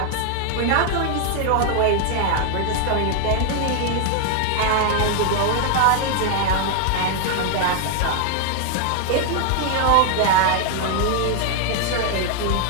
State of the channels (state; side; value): different; both; correlation 0.00